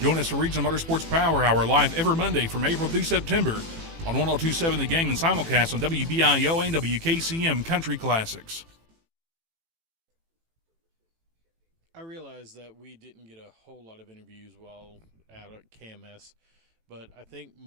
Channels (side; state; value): left; late; 18 ms